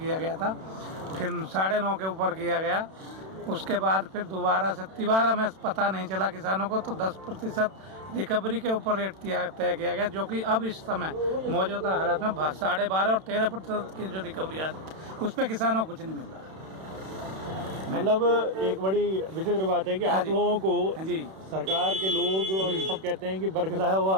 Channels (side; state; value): left; late; 31 ms